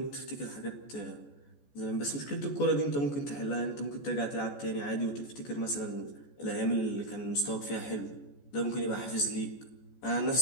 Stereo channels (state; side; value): late; right; 14 ms